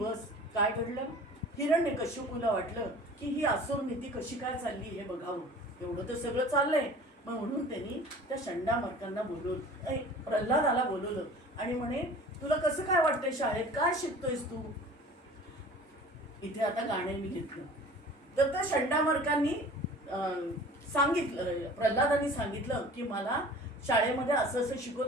काय घडलं? हिरण्यकशिपूला वाटलं की ही असुर नीती कशी काय चालली हे बघावं. एवढं तर सगळं चाललंय. मग म्हणून त्यांनी त्या षंडामर्कांना बोलवलं, प्रल्हादाला बोलवलं आणि म्हणे तुला कसं काय वाटतंय शाळेत? काय शिकतोयस तू? इथे आता गाणे मी घेतलं. तर त्या षंडामर्कांनी सांगितलं, प्रल्हादांनी सांगितलं की मला शाळेमध्ये असं असं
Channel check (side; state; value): both; normal; correlation 0.44